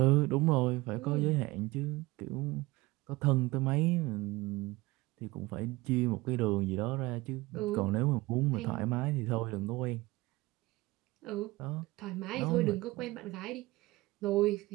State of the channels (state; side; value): quieter; left; 20.8 dB